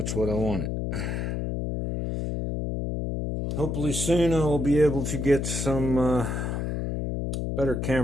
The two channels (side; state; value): left; noise; hum, 2 dB below the sound